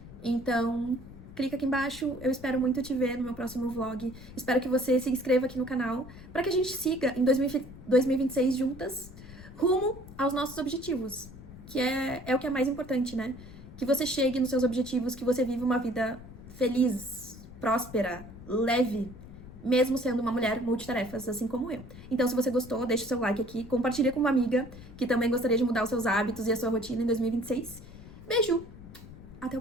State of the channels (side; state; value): left; noise; rumble, 16 dB below the sound